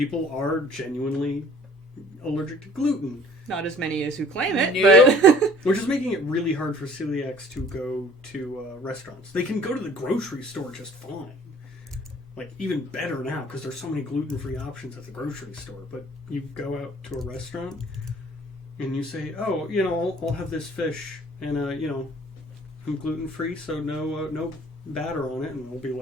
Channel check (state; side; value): normal; both; correlation 0.53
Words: are genuinely allergic to gluten. Not as many as who claim it, Nope. but... Which is making it really hard for celiacs to go to restaurants. They can go to the grocery store just fine. Like, even better now, because there's so many gluten-free options at the grocery store. But you go out to a restaurant, and you say, oh, you know, I'll have this fish, and, you know, I'm gluten-free, so no batter on it. And we'll be